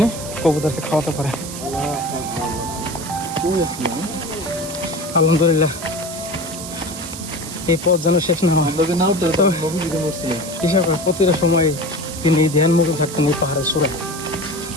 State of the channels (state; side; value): noise; right; hiss, 10 dB below the sound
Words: কবুতরকে খাওয়াতে পারে। আলহামদুলিল্লাহ, এই পথ যেন শেষ না হয়। হিসাব প্রতিটা সময় তিনি ধ্যান মুখে থাকতেন এই পাহাড়ের চূড়ায়।